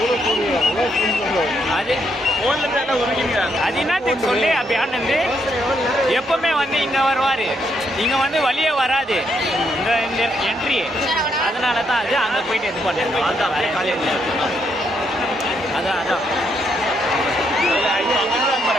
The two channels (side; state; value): both; normal; correlation 0.76